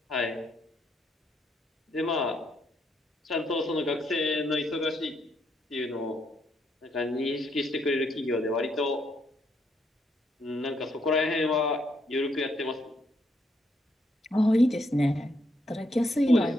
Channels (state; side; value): normal; both; correlation 0.75